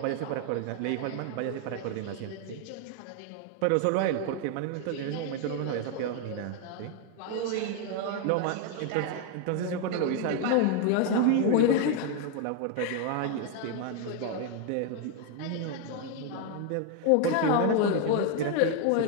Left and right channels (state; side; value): different; both; correlation 0.01